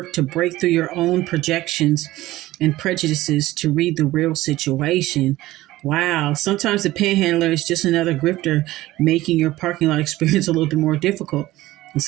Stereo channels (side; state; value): left; quieter; 17.0 dB